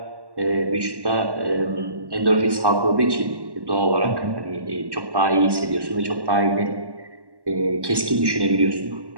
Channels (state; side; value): late; left; 1.1 ms